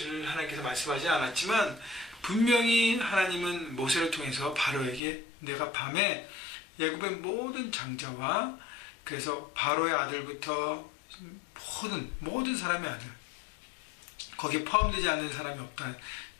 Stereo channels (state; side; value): drops out; right; at 5.0 s